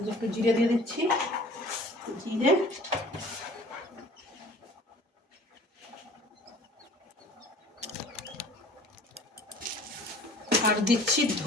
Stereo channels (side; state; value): both; normal; correlation 0.47